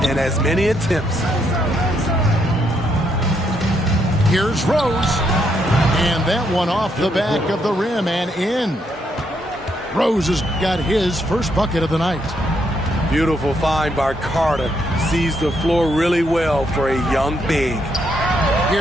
and as many attempts. Here's Rose. And that one off the back of the rim and in. Rose has got his first bucket of the night. Beautiful find by Carter. Sees the floor really well for a young big.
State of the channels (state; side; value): normal; both; correlation 0.76